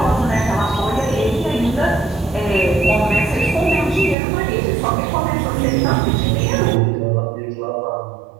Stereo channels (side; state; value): left; drops out; at 4.2 s